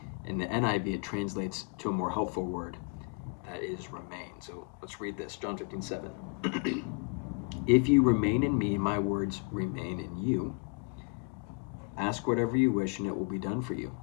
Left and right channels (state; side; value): quieter; right; 35.5 dB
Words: In the NIV, it translates to a more helpful word that is remain. So let's read this, John 15:7. If you remain in me, my words remain in you. Ask whatever you wish and it will be done for you.